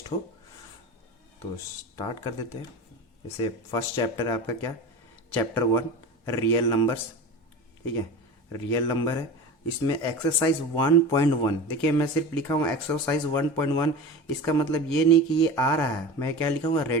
हो। तो स्टार्ट कर देते हैं। जैसे फर्स्ट चैप्टर है आपका क्या, चैप्टर 1 रियल नंबर्स, ठीक है, रियल नंबर है। इसमें एक्सरसाइज 1.1, देखिए मैं सिर्फ लिखा हूँ एक्सरसाइज 1.1। इसका मतलब ये नहीं कि ये आ रहा है, मैं क्या लिखा हूँ,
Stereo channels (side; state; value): both; normal; correlation 0.30